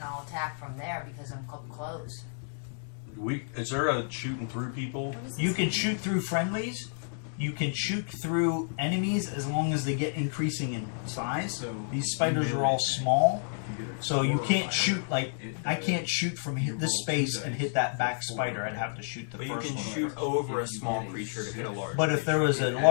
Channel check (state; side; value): silent; right; digital silence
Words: I'll attack from there because I'm close. Is there a shooting through people? You can shoot through friendlies. You can shoot through enemies as long as they get increasing in size. So These spiders are all small, so you can't shoot like I can't shoot from this space and hit that back spider. I'd have to shoot the But you first can one. shoot over a small creature to hit a large. But if there was a